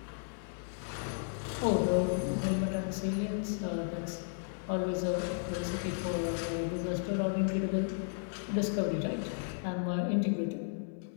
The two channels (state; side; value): silent; right; 55 dB below the other